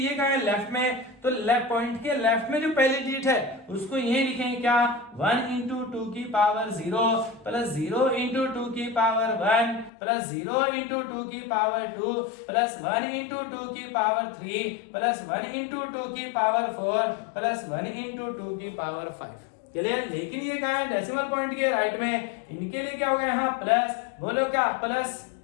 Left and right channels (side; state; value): right; drops out; at 9.9 s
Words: कहां है, लेफ्ट में, तो पॉइंट के लेफ्ट में जो पहली डिजिट है उसको यही लिखेंगे क्या, 1 इंटू 2 की पावर 0 प्लस 0 इंटू 2 की पावर 1 प्लस 0 इंटू 2 की पावर 2 प्लस 1 इंटू 2 की पावर 3 प्लस 1 इंटू 2 की पावर 4 प्लस 1 इंटू 2 की पावर 5। क्लियर? लेकिन ये कहां है, डेसिमल पॉइंट के राइट में, इनके लिए क्या होगा यहाँ प्लस, बोलो क्या, प्लस